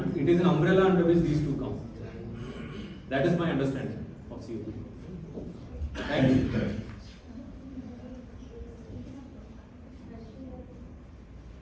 it is an umbrella under which these two come. That is my understanding of COPD. Thank you.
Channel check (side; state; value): both; identical; correlation 1.00